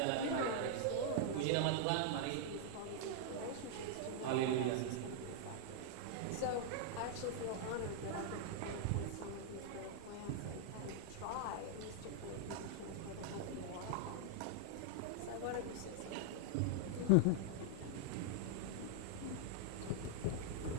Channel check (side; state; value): both; different; correlation -0.01